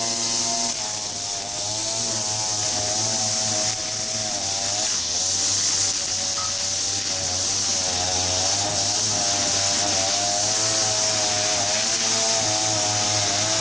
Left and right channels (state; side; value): noise; right; rumble, 21 dB below the sound